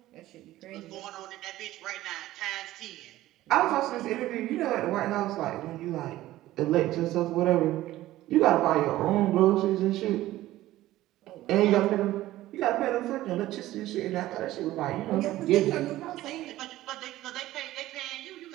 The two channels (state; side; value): quieter; left; 15.6 dB